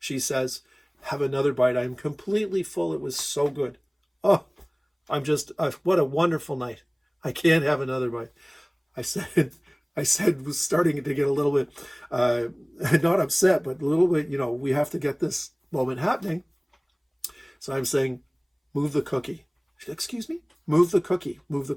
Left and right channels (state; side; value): identical; both; correlation 1.00